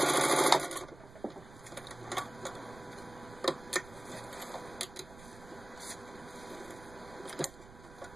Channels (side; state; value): right; noise; rumble, 18 dB below the sound